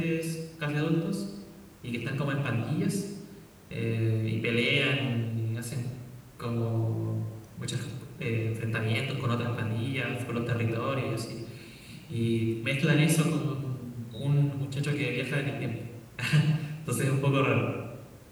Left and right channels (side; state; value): both; identical; correlation 1.00